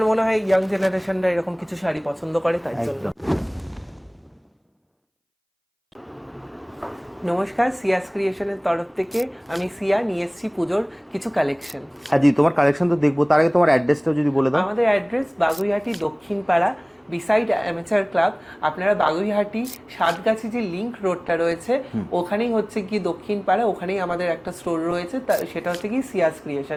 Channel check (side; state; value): both; identical; correlation 1.00